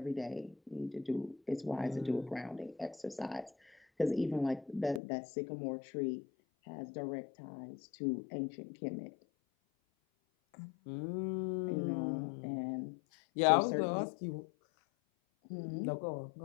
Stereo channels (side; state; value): right; drops out; at 5.0 s